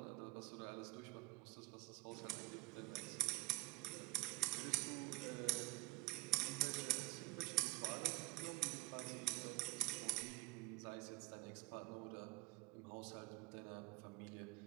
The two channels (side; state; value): left; quieter; 19.9 dB